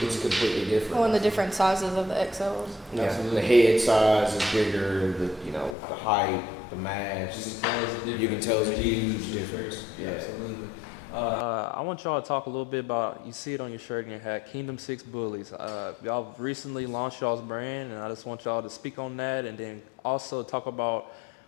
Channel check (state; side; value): drops out; right; at 5.8 s